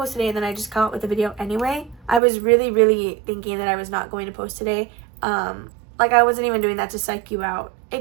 today, and then I just come out with the video anyway. I was really thinking that I was not going to post today. Like, I wasn't even doing that to psych you out.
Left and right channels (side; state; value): left; drops out; at 2.2 s